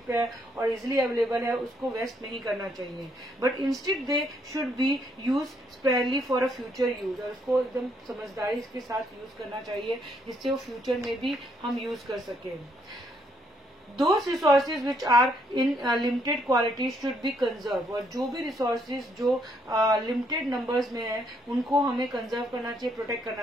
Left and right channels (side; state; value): both; normal; correlation 0.72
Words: है और इजिली अवेलेबल है उसको वेस्ट नहीं करना चाहिए, but instead they should be use sparingly for a future use, और उसको एकदम समझदारी के साथ यूज करना चाहिए जिससे वो फ्यूचर में भी हम यूज कर सके। Those resources which are in limited quality should be conserved। और जो भी resources जो limited numbers में है उनको हमें conserve करना चाहिए, protect